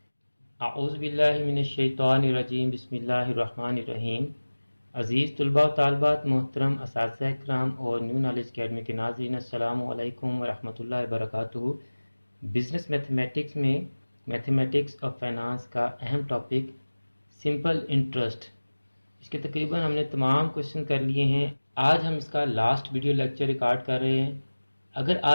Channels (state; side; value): inverted; both; correlation -1.00